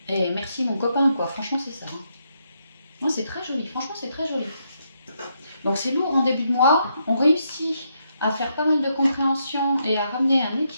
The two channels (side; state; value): both; inverted; correlation -0.78